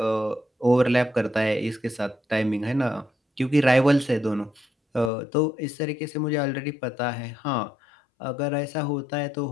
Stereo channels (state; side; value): drops out; right; at 5.1 s